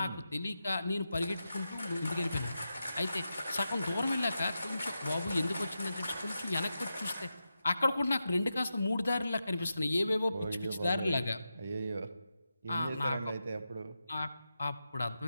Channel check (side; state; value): both; inverted; correlation -0.90